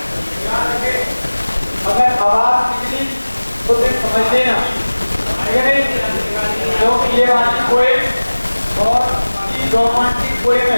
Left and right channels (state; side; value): inverted; both; correlation -1.00